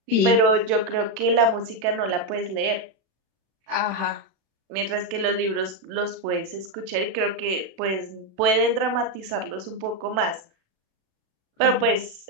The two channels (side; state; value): left; late; 37 ms